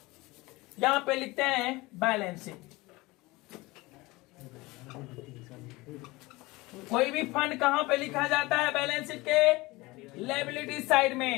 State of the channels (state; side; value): quieter; right; 21.7 dB